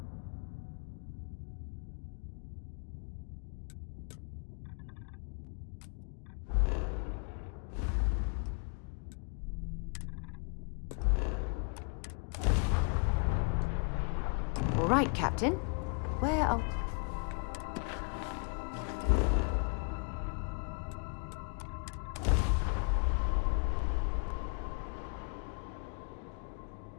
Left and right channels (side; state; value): right; quieter; 37.5 dB